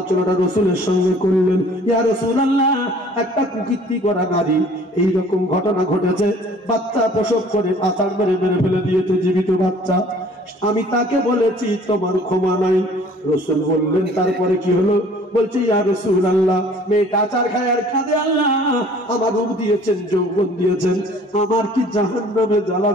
রাসূলের সঙ্গে করলেন। ইয়া রাসূলুল্লাহ, একটা কুকীর্তি করা নারী এইরকম ঘটনা ঘটেছে, বাচ্চা প্রসব করে আচার মেরে মেরে ফেলে দিয়েছে, জীবিত বাচ্চা, আমি তাকে বলেছি তোমার ক্ষমা নাই। রাসূল বললেন, তারপরে কি হলো? বলছে, ইয়া রাসূলুল্লাহ, মেয়েটা আচার খায় আর কাঁদে, আল্লাহ আমার রূপ দিয়েছেন, যৌবন দিয়েছেন, আমার কি জাহান্নামে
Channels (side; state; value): both; normal; correlation 0.52